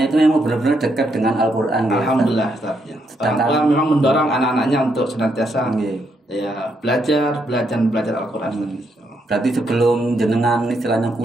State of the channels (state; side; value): normal; both; correlation 0.77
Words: itu memang benar-benar dekat dengan Al-Quran. Alhamdulillah Ustaz. Orang tua memang mendorong anak-anaknya untuk senantiasa belajar Al-Quran. Berarti sebelum jenengan istilahnya